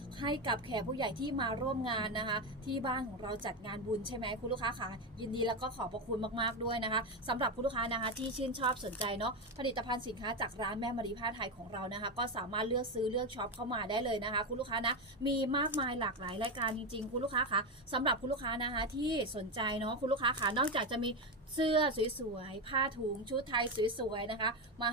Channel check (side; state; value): both; normal; correlation 0.12